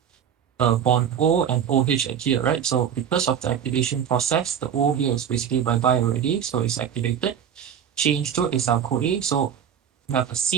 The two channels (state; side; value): quieter; left; 8.6 dB